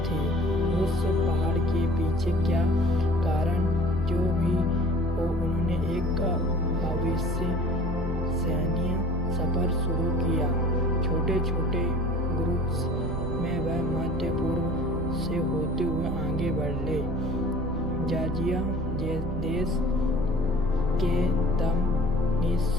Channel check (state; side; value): normal; both; correlation 0.47